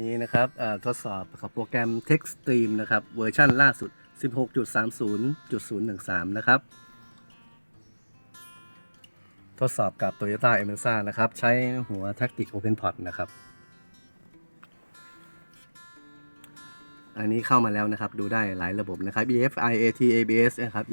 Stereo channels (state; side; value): inverted; both; correlation -1.00